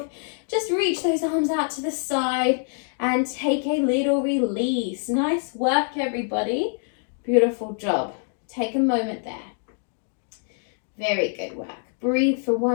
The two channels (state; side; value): silent; right; 56 dB below the other